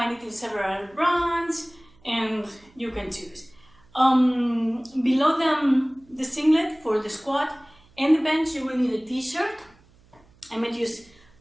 it in several brands and you can choose. Below the singlet for the squat and the bench, you will need a t-shirt. I'm going to use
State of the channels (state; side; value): noise; right; hum, 29 dB below the sound